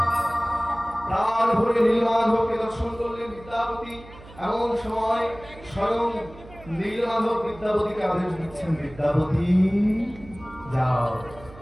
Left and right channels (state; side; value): noise; right; hum, 19 dB below the sound